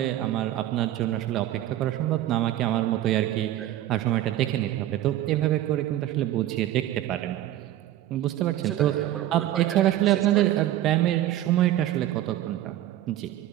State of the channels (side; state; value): left; quieter; 13.3 dB